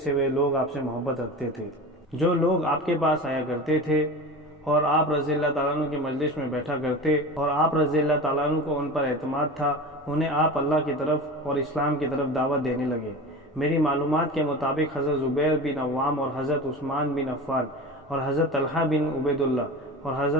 سے وہ لوگ آپ سے محبت رکھتے تھے۔ جو لوگ آپ کے پاس آیا کرتے تھے اور آپ رضی اللہ تعالیٰ عنہ کی مجلس میں بیٹھا کرتے اور آپ رضی اللہ تعالیٰ عنہ کو ان پر اعتماد تھا، انہیں آپ اللہ کی طرف اور اسلام کی طرف دعوت دینے لگے۔ میری معلومات کے مطابق حضرت زبیر بن عوام اور حضرت عثمان بن عفان اور حضرت طلحہ بن عبید اللہ اور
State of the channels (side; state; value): both; normal; correlation 0.31